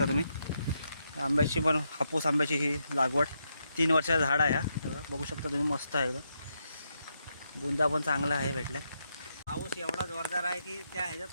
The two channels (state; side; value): inverted; both; correlation -0.82